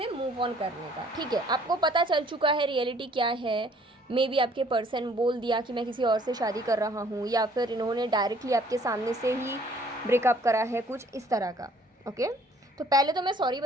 मूव ऑन करने का। ठीक है, आपको पता चल चुका है रियलिटी क्या है। मे बी आपके पर्सन बोल दिया कि मैं किसी और से शादी कर रहा हूँ, या फिर इन्होंने डायरेक्टली आपके सामने से ही ब्रेकअप करा है, कुछ इस तरह का। ओके, तो पहले तो मैं सॉरी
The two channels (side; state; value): both; normal; correlation 0.59